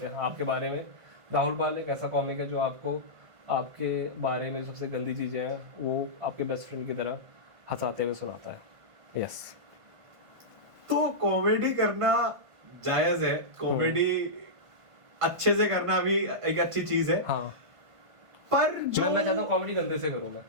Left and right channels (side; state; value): left; late; 1.5 ms